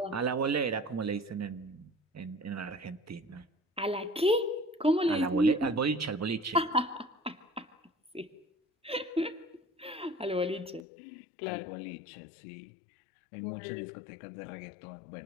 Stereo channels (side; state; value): right; drops out; at 10.8 s